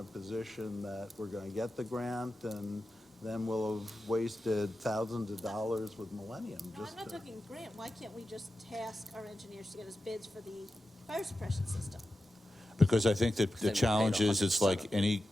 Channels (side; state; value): both; normal; correlation 0.91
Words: position that we're going to get the grant, and then we'll have wasted thousands of dollars with Millennium. No, just I'm not to- talking grant. Why can't we just task our engineers to get us bids for the fire suppression system? because I think that Then the we paid challenge is, it's 100% like of it. any